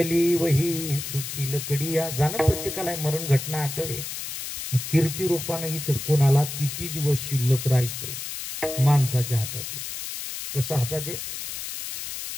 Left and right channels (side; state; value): left; noise; hiss, 7 dB below the sound